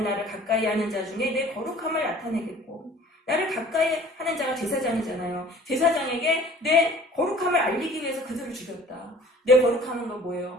나를 가까이 하는 자 중에 내 거룩함을 나타내겠고, 나를 가까이 하는 자가 제사장이잖아요. 제사장에게 내 거룩함을 알리기 위해서 그들을 죽였다. 내 거룩함은 건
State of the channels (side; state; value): both; normal; correlation 0.49